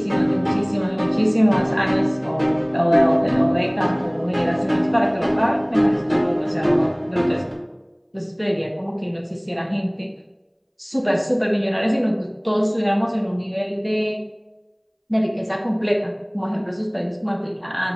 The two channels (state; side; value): identical; both; correlation 1.00